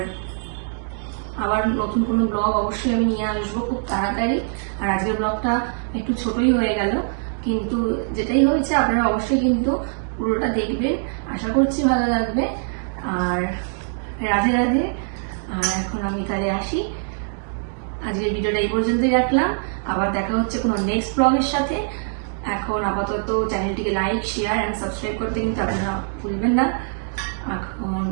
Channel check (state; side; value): silent; left; digital silence